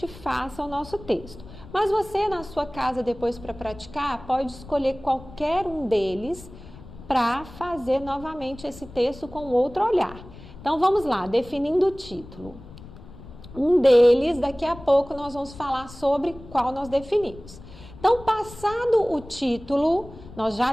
faça o nosso texto. Mas você na sua casa depois para praticar pode escolher qualquer um deles para fazer novamente esse texto com outro olhar. Então vamos lá, definindo o título. Um deles, daqui a pouco nós vamos falar sobre qual nós definimos. Então, passado o título, nós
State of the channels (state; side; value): noise; left; rumble, 17 dB below the sound